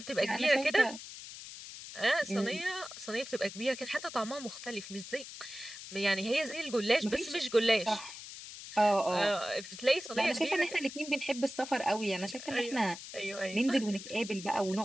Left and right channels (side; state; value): left; noise; hiss, 12 dB below the sound